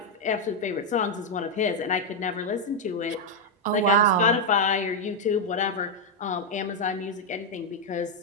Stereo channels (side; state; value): both; normal; correlation 0.00